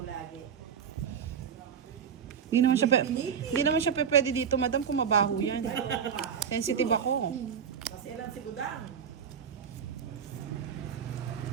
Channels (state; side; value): quieter; left; 7.6 dB